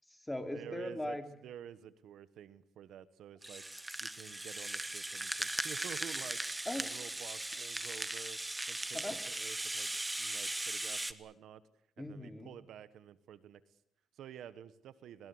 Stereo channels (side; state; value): both; normal; correlation 0.95